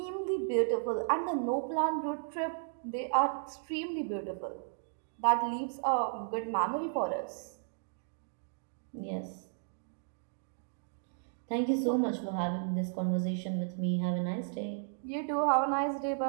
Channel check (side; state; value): left; silent; digital silence